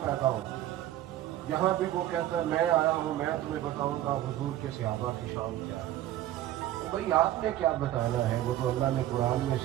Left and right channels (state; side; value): quieter; left; 13.5 dB